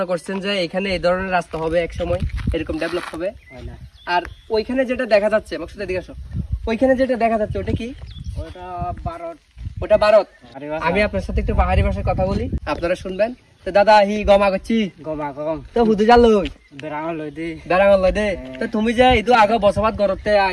করছেন যে এখানে এই ধরনের রাস্তা হবে, এক সময় এরকম ডেভেলপ হবে? আর ওইখানে যেটা দেখা যাচ্ছে, মাকসুদ এদিকে আসো, ওইখানে যেটা দেখা যাচ্ছে ওটা কি? ওটা ভারত। ওটা ভারত। আমি আপনার সাথে একটু পাহাড়ি ভাষায় কথা বলি, আপনারা শুনবেন। তো দাদা হি গমা করছি তো হুদু জাল বেড়াঙল লই দে। তো তুমি যে ইদু আগে বসবাস করতে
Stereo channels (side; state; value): both; identical; correlation 1.00